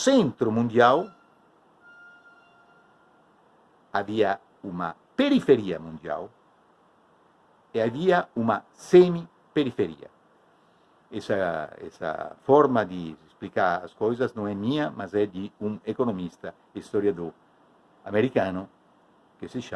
mundial, havia uma periferia mundial e havia uma semi-periferia. Essa forma de explicar as coisas não é minha, mas é de um economista, historiador americano, que se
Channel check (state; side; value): identical; both; correlation 1.00